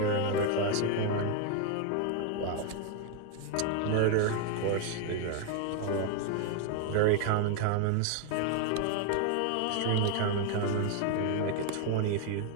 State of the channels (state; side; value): different; both; correlation 0.00